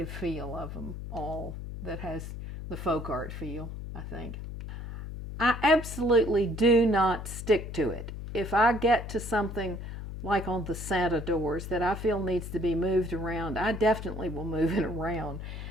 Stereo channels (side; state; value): left; noise; hum, 8 dB below the sound